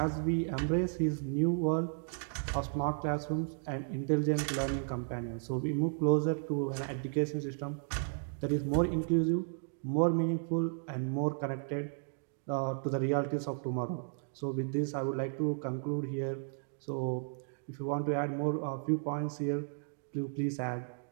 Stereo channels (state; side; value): silent; left; digital silence